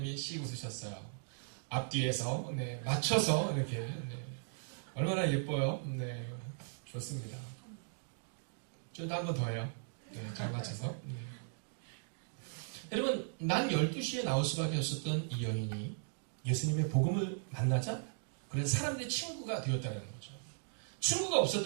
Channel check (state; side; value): silent; left; digital silence